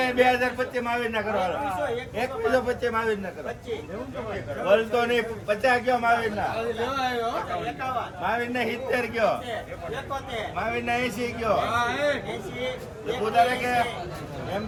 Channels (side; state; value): both; identical; correlation 1.00